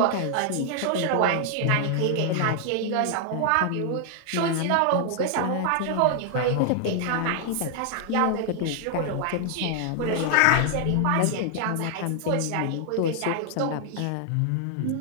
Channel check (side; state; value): both; different; correlation 0.00